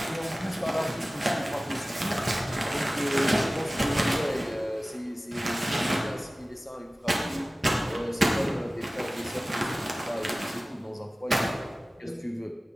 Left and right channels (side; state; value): both; normal; correlation 0.97